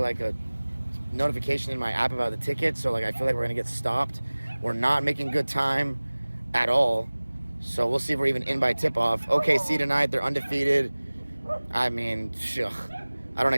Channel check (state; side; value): inverted; both; correlation -1.00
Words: a notification in my app about the ticket, so like I feel like we're gonna get stopped. We're not making good time at all, so we'll see if we're even in by tip-off. OKC tonight, they're undefeated. I mean, I don't